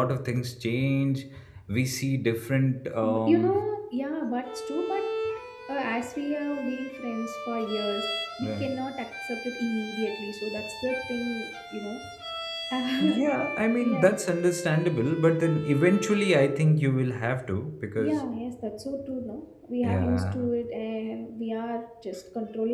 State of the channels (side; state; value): both; identical; correlation 1.00